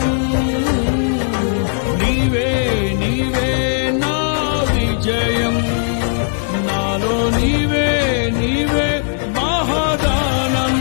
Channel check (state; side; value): silent; right; digital silence